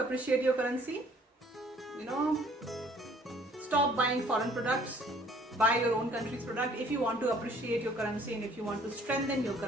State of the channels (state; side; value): normal; both; correlation 0.57